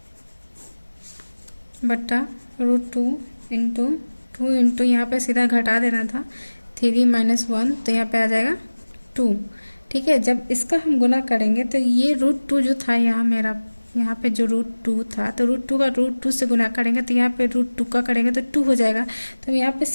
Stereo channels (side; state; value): both; inverted; correlation -1.00